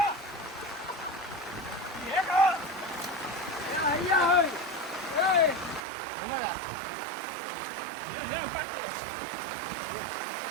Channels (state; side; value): drops out; left; at 5.8 s